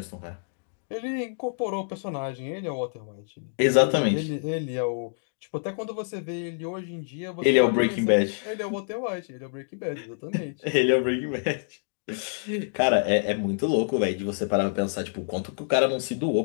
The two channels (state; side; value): silent; right; digital silence